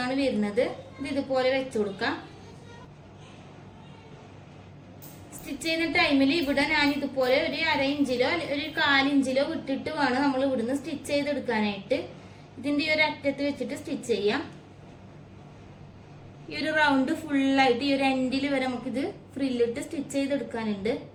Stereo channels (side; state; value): both; identical; correlation 1.00